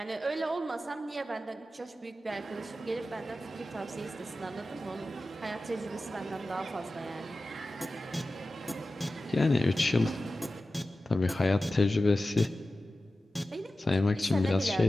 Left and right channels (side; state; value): both; normal; correlation 0.94